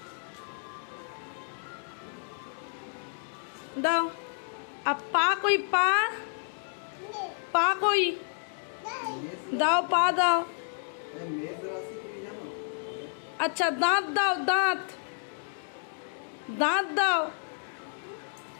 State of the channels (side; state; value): right; silent; digital silence